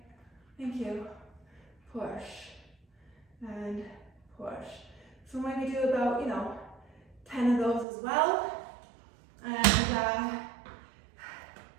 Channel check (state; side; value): drops out; left; at 7.9 s